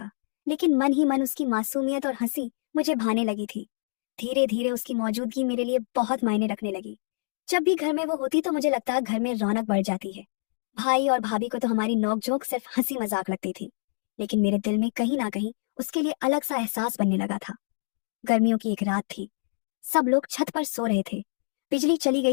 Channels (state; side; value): silent; right; digital silence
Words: लेकिन मन ही मन उसकी मासूमियत और हंसी मुझे भाने लगी थी। धीरे धीरे उसकी मौजूदगी मेरे लिए बहुत मायने रखने लगी। जब भी घर में वो होती तो मुझे लगता घर में रौनक बढ़ जाती है। भाई और भाभी को तो हमारी नोकझोंक सिर्फ हंसी मजाक लगती थी, लेकिन मेरे दिल में कहीं ना कहीं उसके लिए अलग सा एहसास बनने लगा था। गर्मियों की एक रात थी। सब लोग छत पर सो रहे थे। बिजली चली